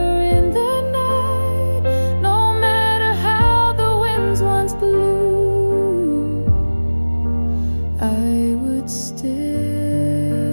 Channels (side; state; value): both; inverted; correlation -1.00